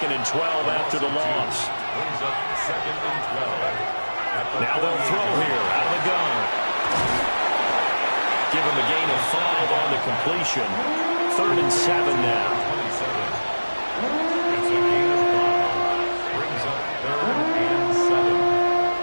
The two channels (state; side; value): inverted; both; correlation -1.00